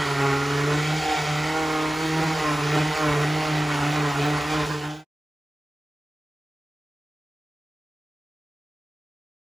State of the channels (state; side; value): normal; both; correlation 0.95